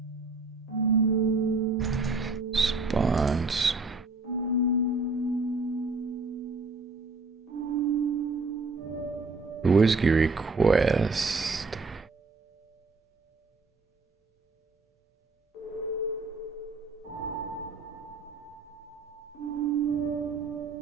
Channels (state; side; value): quieter; left; 3.7 dB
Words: response, whiskey request.